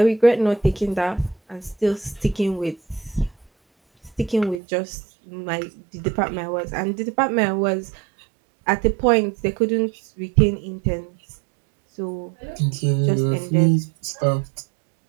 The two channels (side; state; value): left; drops out; at 4.6 s